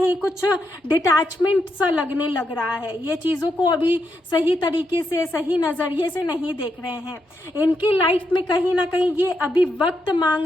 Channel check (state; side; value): normal; both; correlation 0.82